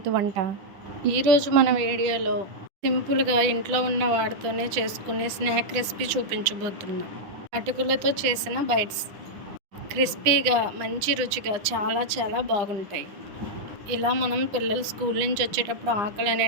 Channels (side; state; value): left; late; 9.9 ms